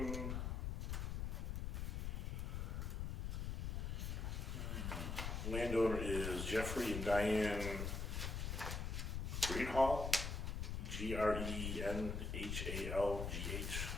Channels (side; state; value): left; noise; rumble, 2 dB below the sound